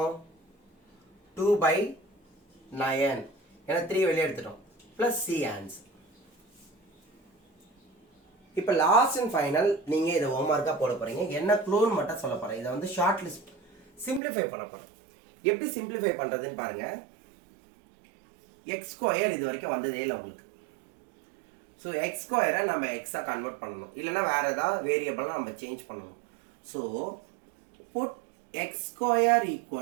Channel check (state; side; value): drops out; left; at 14.2 s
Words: 2 by 9. ஏன்னா 3 வெளியே எடுத்துட்டோம். Plus C answer. இப்போ லாஸ்ட் அண்ட் ஃபைனல் நீங்கள் இதை ஹோம்ஒர்க்காக போட போகிறீங்க. என்ன க்ளூன்னு மட்டும் சொல்ல போகிறேன். இதை வந்து ஷார்ட் லிஸ்ட் சிம்பிளிஃபை பண்ண போகிறேன். எப்படி சிம்பிளிஃபை பண்ணுறதுன்னு பாருங்க. எக்ஸ் ஸ்கொயர் இது வரைக்கும் வந்ததே இல்லை உங்களுக்கு. ஸோ எக்ஸ் ஸ்கொயரை நம்ம எக்ஸாக கன்வெர்ட் பண்ணணும். இல்லைன்னா வேறு ஏதாவது வேரியபிளாக நம்ம சேஞ்ச் பண்ணணும். So put x square